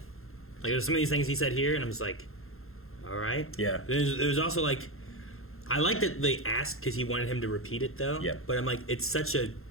Like there's some of these things he said here, and I'm just like, all right. Yeah. There's also like, I like that they asked because he wanted him to repeat it though. Yeah. But I'm like, it's such a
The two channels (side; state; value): right; late; 0.61 ms